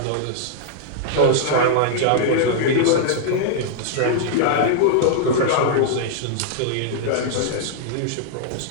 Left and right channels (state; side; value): different; both; correlation -0.01